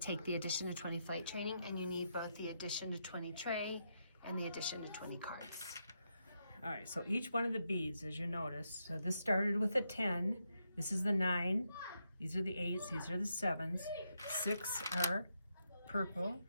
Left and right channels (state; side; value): inverted; both; correlation -0.82